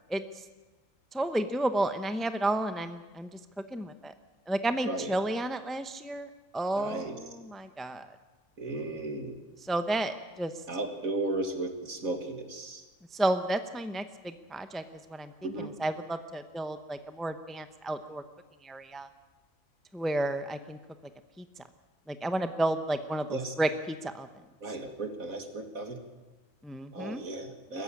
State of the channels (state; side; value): normal; both; correlation 0.75